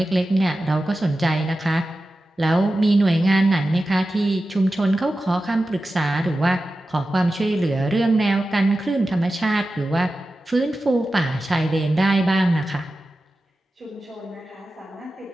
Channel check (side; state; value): both; normal; correlation 0.93